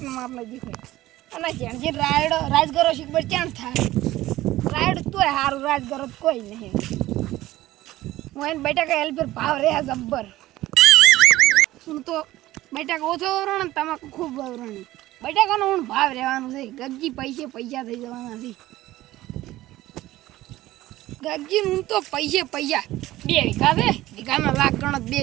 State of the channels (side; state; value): left; quieter; 16.2 dB